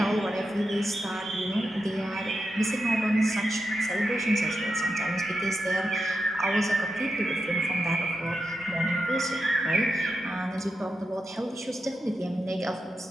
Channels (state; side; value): normal; both; correlation 0.88